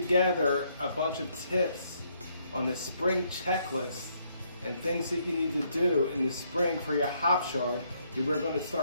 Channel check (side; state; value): both; inverted; correlation -0.72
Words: a bunch of tips on the spring checklist and things that you need to do in the spring for your hop yard that we're going to